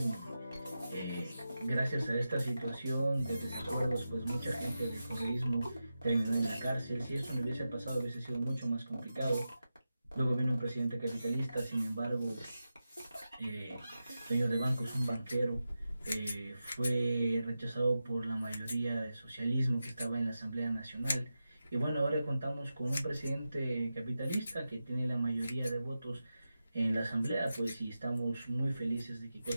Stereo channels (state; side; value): inverted; both; correlation -0.92